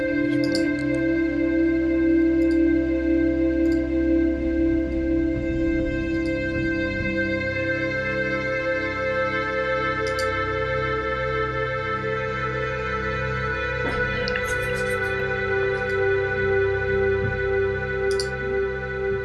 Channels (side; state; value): both; identical; correlation 1.00